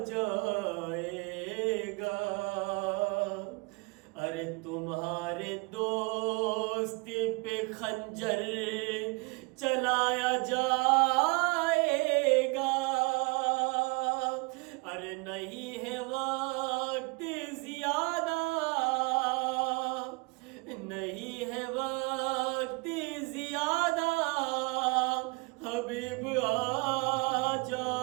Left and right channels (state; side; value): quieter; left; 29.4 dB